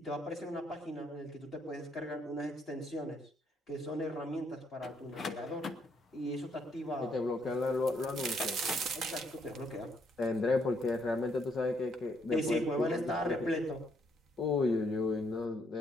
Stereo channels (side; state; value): both; normal; correlation 0.72